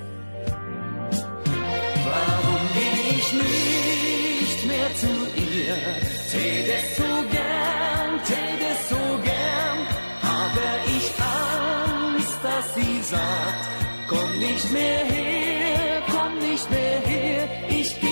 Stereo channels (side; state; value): both; inverted; correlation -1.00